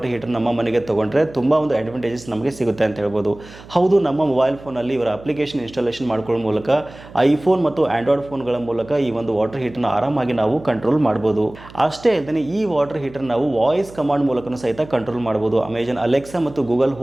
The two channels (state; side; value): noise; right; hum, 19 dB below the sound